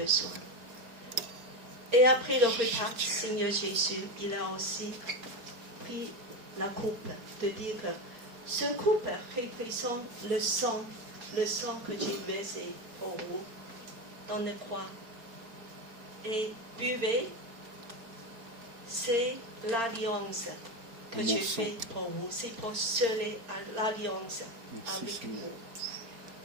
Et après le repas, Seigneur Jésus, il a aussi pris la coupe, de dire que ce coupe représente le sang que j'ai versé pour vous dans la croix. Et buvez, c'est l'alliance que Mon j'ai sang. faite pour vous. C'est pour sceller l'alliance Merci, avec Seigneur.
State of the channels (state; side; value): late; left; 4.3 ms